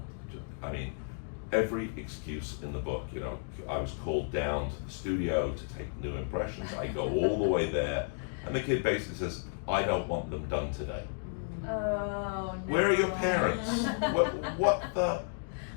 to. I mean, every excuse in the book. I was called down to the studio to take new impressions. I go all the way there, and the kid basically says, "I don't want them done today." Oh, no. Where are your parents? What the?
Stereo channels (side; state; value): right; silent; digital silence